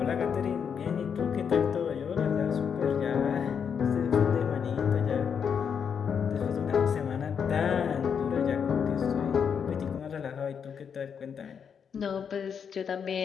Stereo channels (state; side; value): quieter; right; 7.1 dB